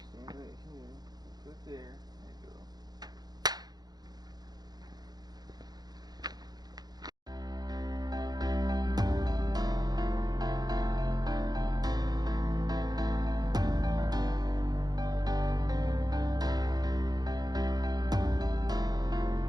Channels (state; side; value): late; left; 0.19 ms